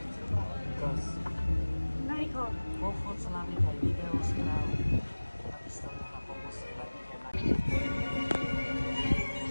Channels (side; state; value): both; inverted; correlation -1.00